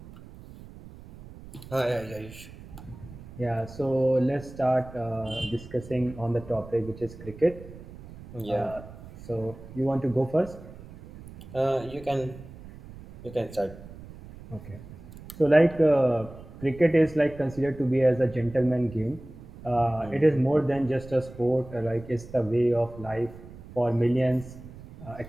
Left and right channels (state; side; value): noise; right; rumble, 17 dB below the sound